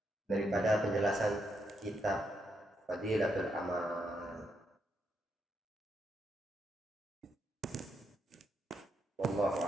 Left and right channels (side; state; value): both; normal; correlation 0.80